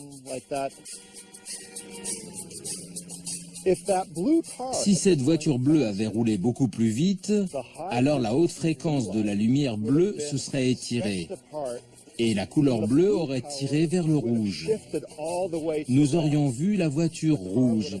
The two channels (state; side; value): identical; both; correlation 1.00